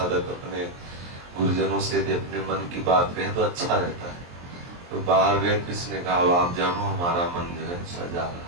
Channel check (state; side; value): late; left; 23 ms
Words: अपने गुरुजनों से यदि अपने मन की बात कहे तो अच्छा रहता है। तो बाहर गए, किसने कहा आप जानो हमारा मन जो है सजा रहा है।